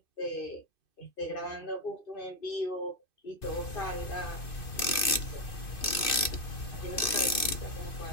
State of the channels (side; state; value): right; late; 2.5 ms